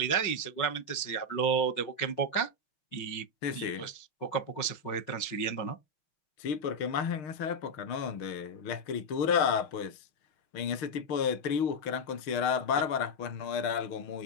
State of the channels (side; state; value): right; late; 6.5 ms